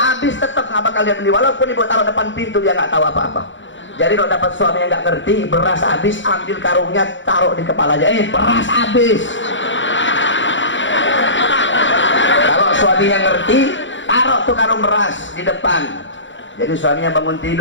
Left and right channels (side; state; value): right; late; 0.55 ms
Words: habis tetap nggak bakal dia beli, walaupun ibu taruh depan pintu dia nggak tahu apa-apa. Jadi kalau dapat suami yang nggak ngerti, beras habis, ambil karungnya taruh di kepalanya, beras habis. Kalau suaminya ngerti, taruh tuh karung beras di depan. Jadi suaminya bangun